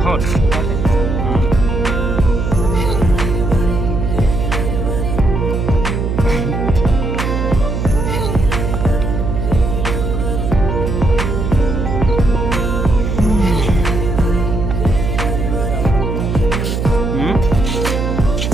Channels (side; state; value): right; noise; hum, 1 dB below the sound